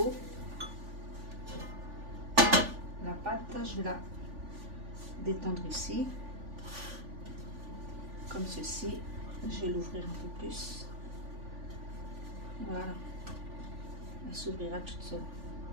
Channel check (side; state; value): left; late; 3.5 ms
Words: la pâte, je vais la détendre ici, comme ceci. Je vais l'ouvrir un peu plus. Voilà, elle s'ouvrira toute seule.